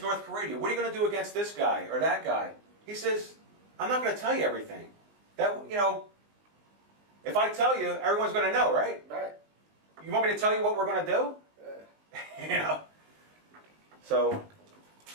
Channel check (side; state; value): left; late; 19 ms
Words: North Korea? What are you going to do against this guy or that guy? He says, I'm not going to tell you everything. If I tell you, everyone's going to know, right? Right. You want me to tell you what we're going to do? So,